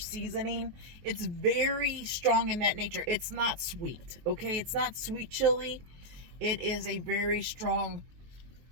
it's very strong in that nature. It's not sweet, okay? It's not sweet chili. It is a very strong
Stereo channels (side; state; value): left; late; 23 ms